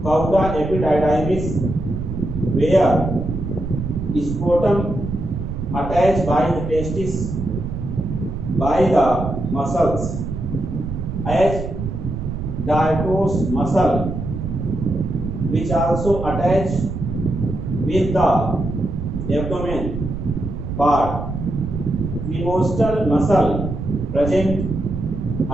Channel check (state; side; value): noise; right; rumble, 6 dB below the sound